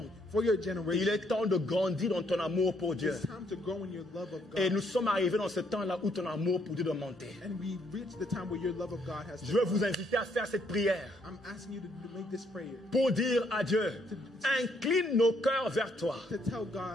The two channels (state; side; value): normal; both; correlation 0.70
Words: Il est temps de grandir dans ton amour pour Dieu. Et nous sommes arrivés dans ce temps-là où ton amour pour Dieu doit monter. Je veux vous inviter à faire cette prière pour dire à Dieu, incline nos cœurs vers toi.